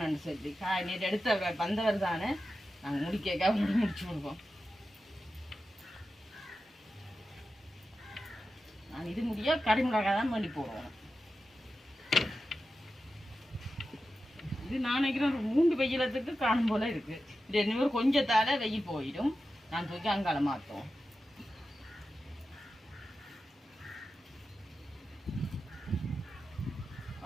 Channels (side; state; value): both; normal; correlation 0.92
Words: சொல்லி நேற்று எடுத்த வந்தவர் தானே நாங்கள் முடிக்க முடிச்சு கொடுப்போம் நாங்கள் இது முடிய கறிமிளகாய் தான் பண்ணி போடுவோம் இது நான் நினைக்கிறேன் ஒரு 3 வெயிலத்துக்கு காணும் போல இருக்கு இது இன்னொரு கொஞ்சத்தால வெயில் போயிடும் நான் தூக்கி அங்கால மாற்றோம்